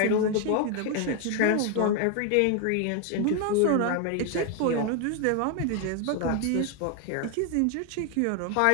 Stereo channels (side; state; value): both; different; correlation 0.01